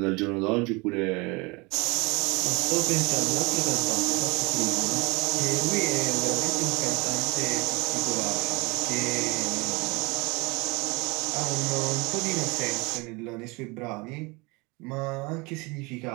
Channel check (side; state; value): left; quieter; 26.6 dB